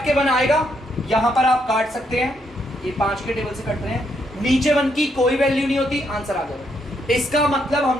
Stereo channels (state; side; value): normal; both; correlation 0.76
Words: के 1 आएगा, यहां पर आप काट सकते हैं, ये 5 के टेबल से कट रहे हैं, नीचे 1 की कोई वैल्यू नहीं होती, आंसर आ जाएगा। इसका मतलब